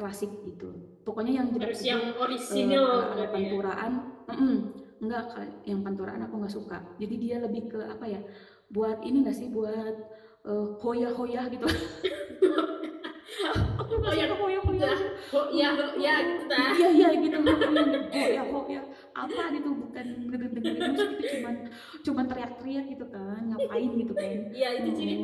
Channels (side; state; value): both; identical; correlation 1.00